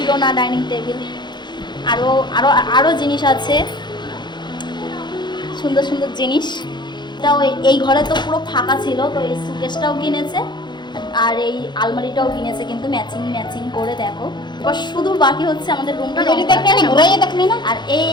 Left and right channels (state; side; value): late; right; 0.21 ms